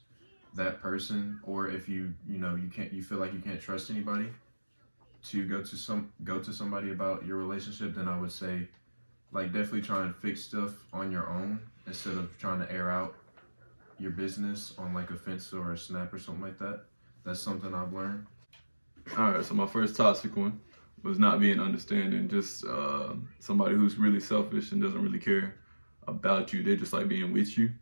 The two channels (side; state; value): both; inverted; correlation -1.00